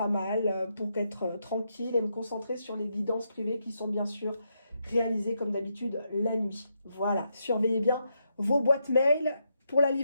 mal pour être tranquille et me concentrer sur les guidances privées qui sont bien sûr réalisées comme d'habitude la nuit. Voilà, surveillez bien vos boîtes mail pour la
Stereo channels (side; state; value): both; inverted; correlation -0.81